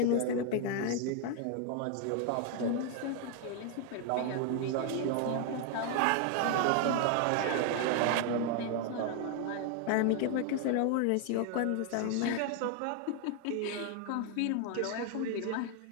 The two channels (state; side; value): different; both; correlation 0.00